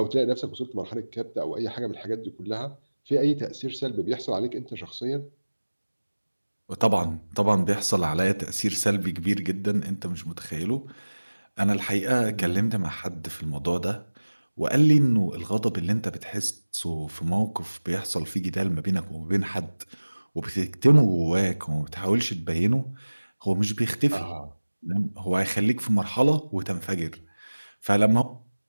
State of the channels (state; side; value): inverted; both; correlation -1.00